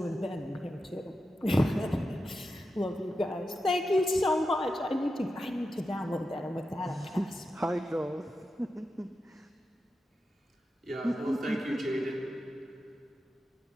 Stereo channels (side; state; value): both; normal; correlation 0.90